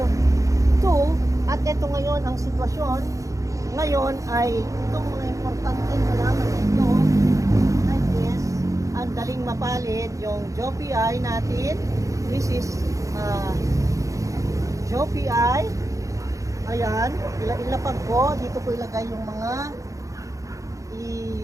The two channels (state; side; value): late; left; 0.16 ms